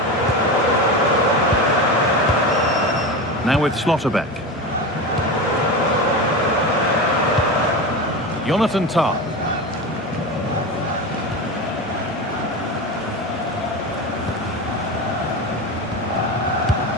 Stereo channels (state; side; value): normal; both; correlation 0.23